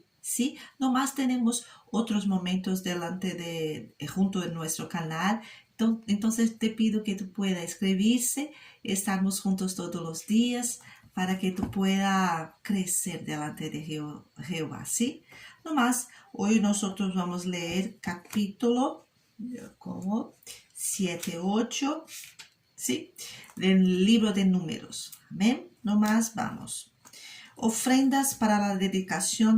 ¿Sí? Nomás tenemos otros momentos junto en nuestro canal. Entonces te pido que tú puedas escribirse, estamos juntos todos los días para que tú puedas crecer delante de Jehová, ¿sí? No más, hoy nosotros vamos a leer capítulo como 7, 8, ¿sí? Del libro de Números. Amén. No más, vamos. Ofrendas para la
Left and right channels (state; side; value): identical; both; correlation 1.00